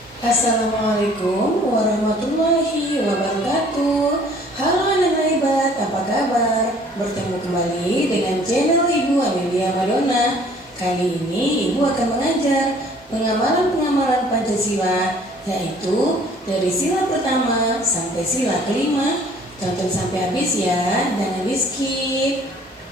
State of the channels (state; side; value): normal; both; correlation 0.55